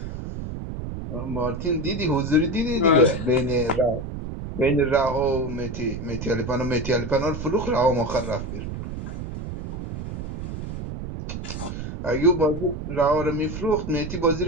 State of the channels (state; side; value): noise; right; rumble, 7 dB below the sound